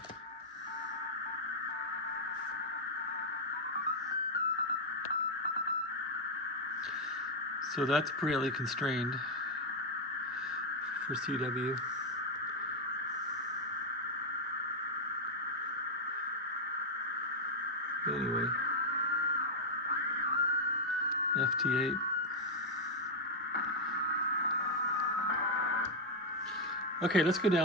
So that's pretty constrained for CW. Anyway, FT8. Okay, let's go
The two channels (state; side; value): normal; both; correlation 0.00